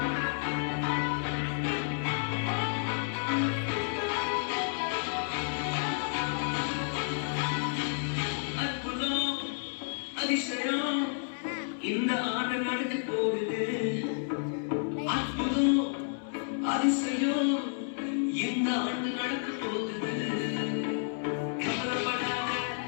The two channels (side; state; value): right; silent; 57 dB below the other